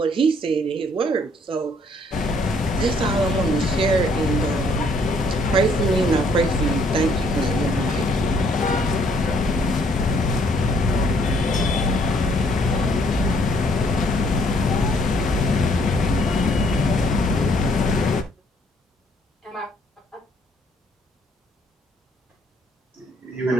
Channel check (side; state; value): both; normal; correlation 0.65